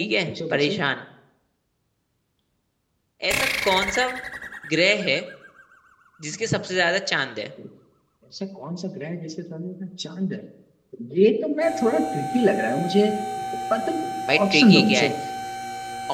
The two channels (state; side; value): identical; both; correlation 1.00